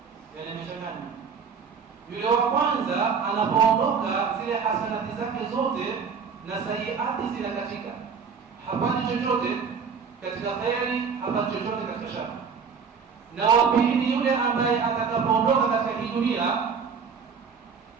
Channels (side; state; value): left; quieter; 6.0 dB